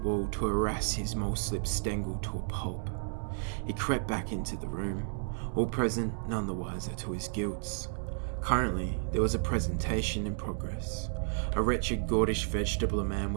to harass his mole-slip Stengel to a pulp. He crept back into the room, all present, none the wiser to his guilts. Currently, there was a presentation in progress. A wretched gordish vegetable man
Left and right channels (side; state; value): left; silent; digital silence